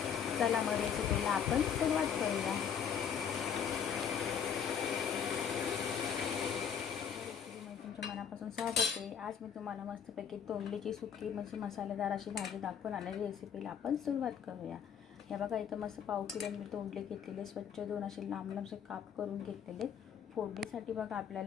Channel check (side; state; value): right; quieter; 7.8 dB